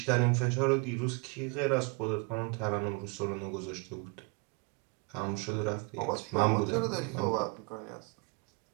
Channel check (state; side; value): quieter; left; 31.9 dB